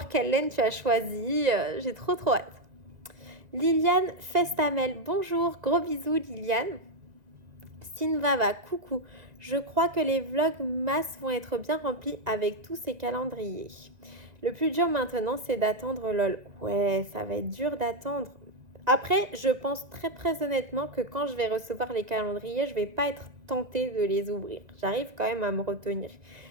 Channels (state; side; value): late; left; 1.9 ms